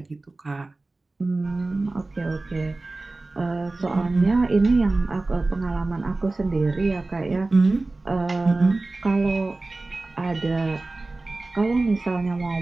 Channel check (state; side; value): quieter; left; 3.2 dB